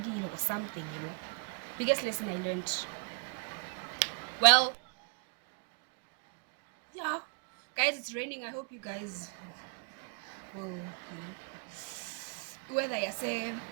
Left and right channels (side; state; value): left; quieter; 38.7 dB